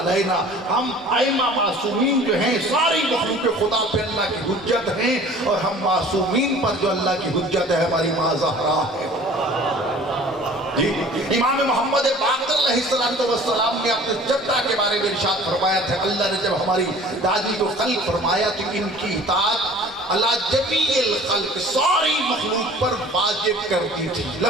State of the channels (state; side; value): normal; both; correlation 0.47